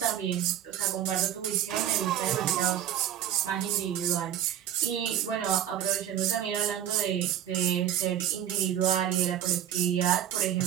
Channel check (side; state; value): left; quieter; 10.6 dB